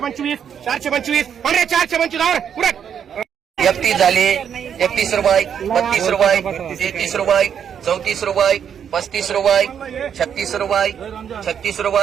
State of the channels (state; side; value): quieter; left; 8.2 dB